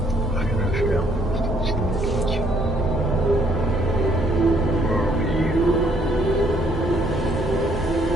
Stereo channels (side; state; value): left; noise; hum, 19 dB below the sound